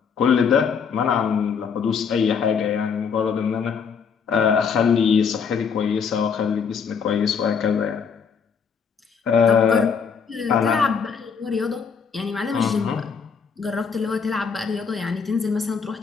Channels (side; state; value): right; quieter; 6.2 dB